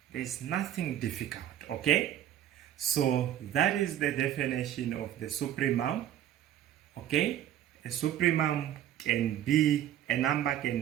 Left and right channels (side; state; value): left; quieter; 11.3 dB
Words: There's nothing difficult, okay? So that is the definition of the supremum. Okay, a supremum can be a number